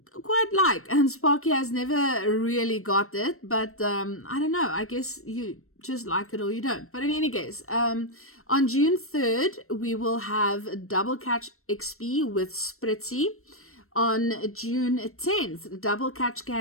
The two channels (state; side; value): late; right; 0.62 ms